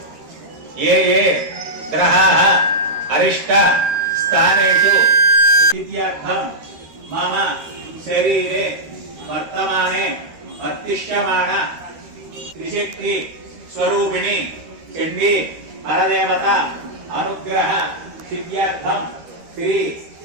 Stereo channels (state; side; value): late; left; 13 ms